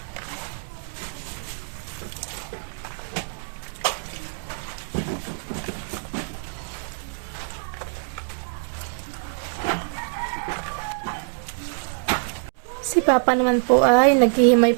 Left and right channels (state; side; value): silent; left; digital silence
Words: Si Papa naman po ay naghihimay